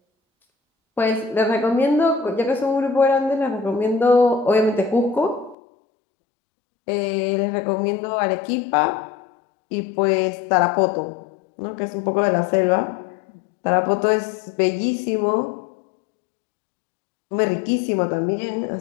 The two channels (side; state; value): right; drops out; at 5.6 s